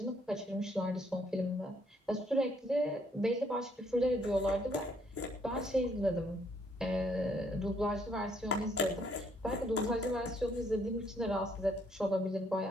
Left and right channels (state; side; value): normal; both; correlation 0.68